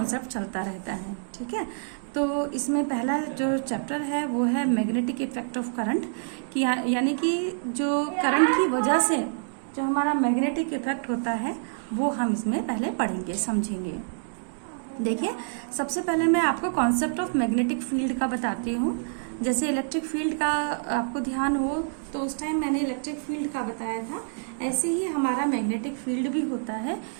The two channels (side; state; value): left; silent; digital silence